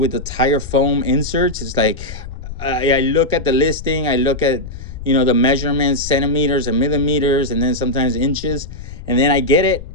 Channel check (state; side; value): noise; left; rumble, 11 dB below the sound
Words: tire foam inserts. It's like I look at the listing, I look at the measurements, centimeters and millimeters, and then sometimes inches, and then I get it.